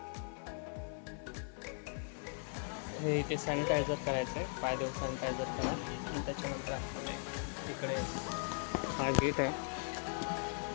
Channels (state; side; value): silent; right; 52 dB below the other